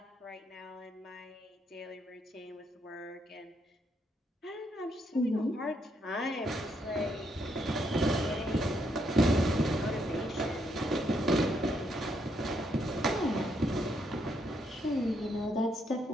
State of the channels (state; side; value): normal; both; correlation 0.75